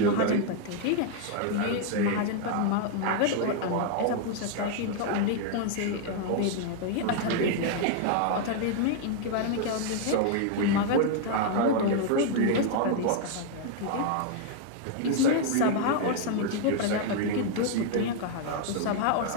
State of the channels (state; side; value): different; both; correlation 0.00